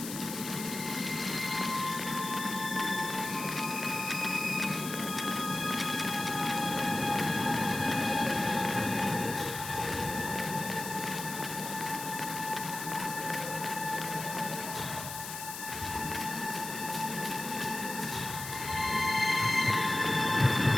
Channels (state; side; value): noise; left; hiss, 8 dB below the sound